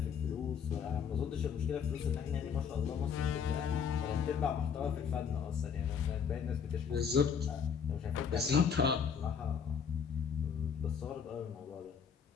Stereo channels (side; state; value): right; quieter; 7.0 dB